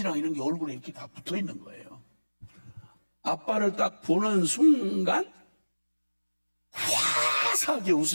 이런 게 얼굴에 이렇게 다 붙어 있는 거예요. 아빠를 딱 보는 순간 화사하게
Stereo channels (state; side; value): inverted; both; correlation -1.00